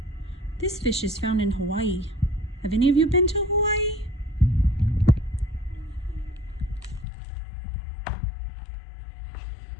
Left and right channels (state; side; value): drops out; right; at 7.1 s